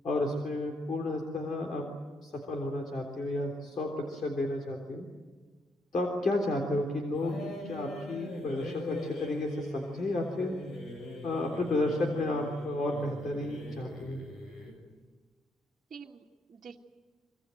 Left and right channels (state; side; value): normal; both; correlation 0.74